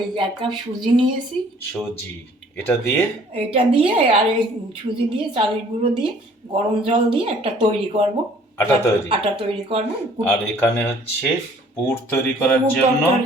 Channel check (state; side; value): normal; both; correlation 0.56